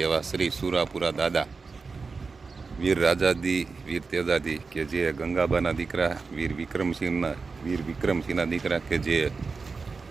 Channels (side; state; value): left; quieter; 4.5 dB